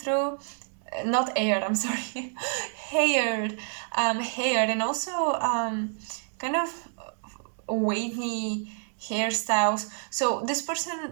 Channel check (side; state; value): left; silent; 59 dB below the other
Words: Not air, I'm sorry. Hair. Hair, and also kind of wavy hairstyles. So this